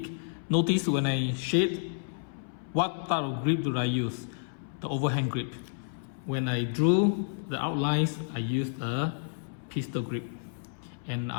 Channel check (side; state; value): right; silent; 58 dB below the other